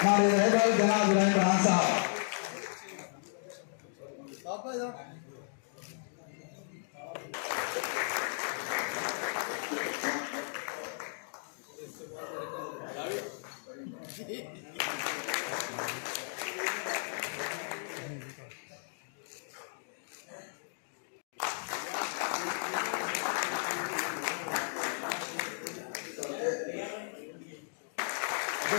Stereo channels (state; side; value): silent; right; digital silence